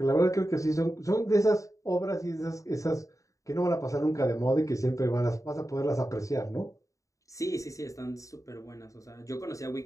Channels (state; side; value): late; right; 0.16 ms